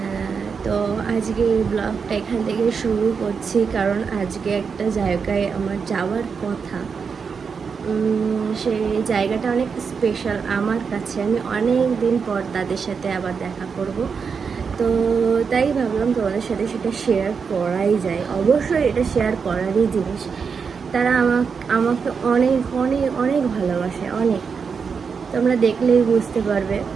তো আজকে এই ব্লগটা এখান থেকে শুরু করছি, কারণ আজকে একটা জায়গায় আমার যাওয়ার কথা। সেই জায়গাটা অনেক স্পেশাল আমার কাছে। আমি অনেক দিন পর তাদের সাথে আবার দেখা করব, তো তাই ভাবলাম তোমাদের সাথে সেটা শেয়ার করাই যায়। অবশ্যই এটা শেয়ার করারই জিনিস। তারা আমাকে অনেক অনেক অনেক ভালোবাসে, অনেক। তোমরা দেখলেই বুঝতে পারবে।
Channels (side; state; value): left; quieter; 5.8 dB